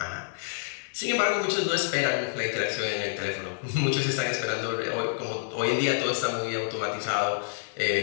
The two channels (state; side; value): silent; right; 59 dB below the other